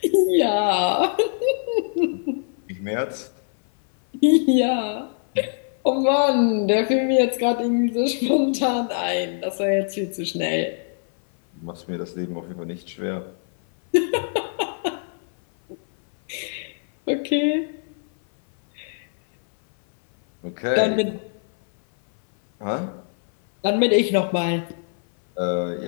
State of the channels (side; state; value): right; silent; 58 dB below the other